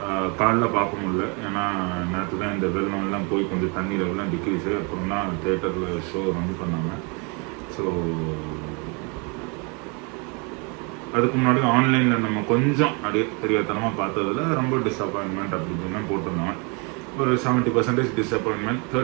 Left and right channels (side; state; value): left; quieter; 32.6 dB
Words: காலைல பார்க்க முடியல, ஏன்னா நேற்று தான் இந்த வெள்ளம்லாம் போய் கொஞ்சம் தண்ணி லெவலாம் டிக்ரீஸு. அப்புறம் தான் தேட்டரில் ஷோ ரன் பண்ணாங்க. ஸோ அதுக்கு முன்னாடி ஆன்லைனில் நம்ம கொஞ்சம் அப்படியே தெரியாதனமாக பார்த்ததில் ரொம்ப டிஸப்பாயின்மெண்ட் அப்படி இப்படின்னு போட்டிருந்தோம். ஒரு 70% டிஸப்பாயின்மெண்ட்,